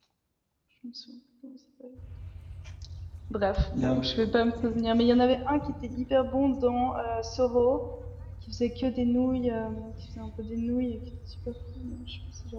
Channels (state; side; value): identical; both; correlation 1.00